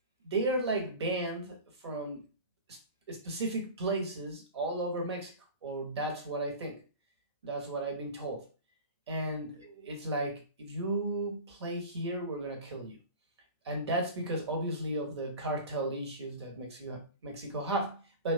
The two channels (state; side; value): inverted; both; correlation -0.34